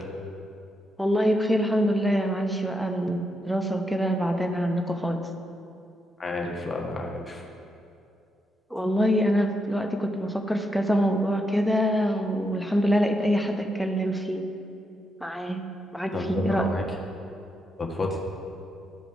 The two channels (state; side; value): normal; both; correlation 0.82